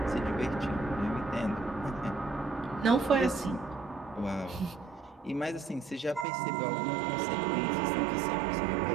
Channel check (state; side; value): drops out; left; at 6.2 s